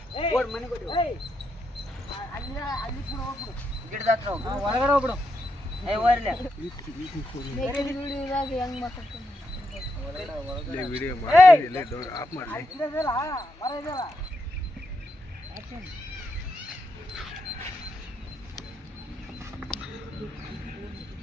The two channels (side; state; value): both; normal; correlation 0.82